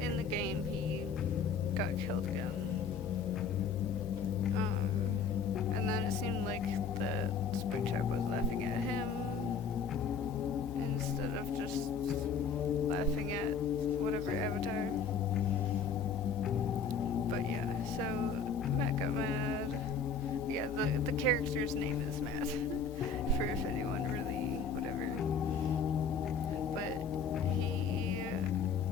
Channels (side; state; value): right; quieter; 5.3 dB